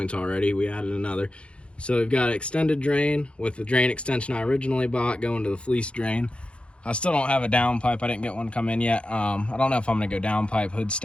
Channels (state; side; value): late; right; 0.059 ms